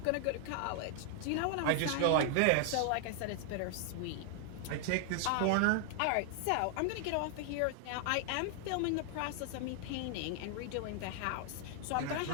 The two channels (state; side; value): different; both; correlation 0.00